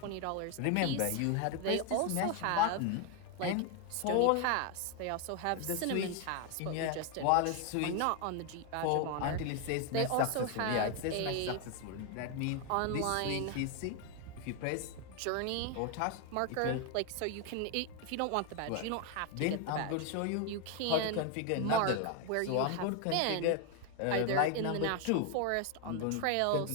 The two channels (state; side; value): different; both; correlation 0.01